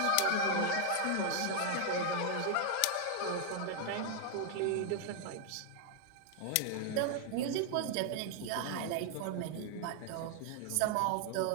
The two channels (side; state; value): both; different; correlation 0.00